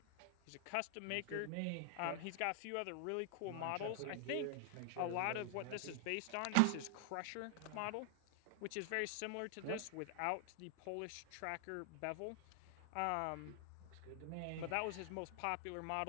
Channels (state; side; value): different; both; correlation 0.00